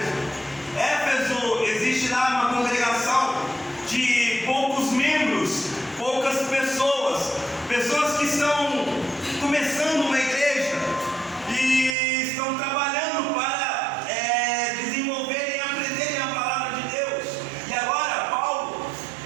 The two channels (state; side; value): drops out; left; at 12.0 s